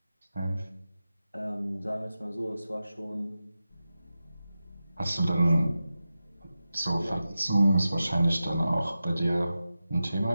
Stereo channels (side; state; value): both; inverted; correlation -0.93